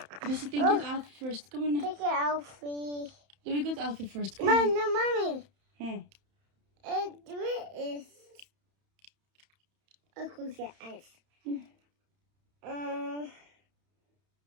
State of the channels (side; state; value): left; late; 31 ms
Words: Missy, think you to Alfie first. Come on now. Take it, Alfie. Let me go to Alfie first. Come on. No, Mommy. Hmm. It is a cookie ice.